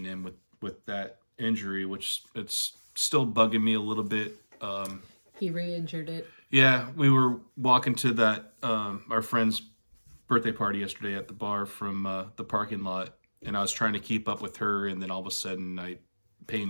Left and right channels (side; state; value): both; inverted; correlation -1.00